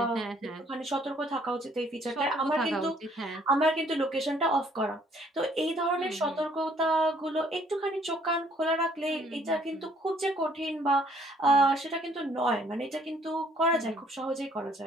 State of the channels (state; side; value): normal; both; correlation 0.62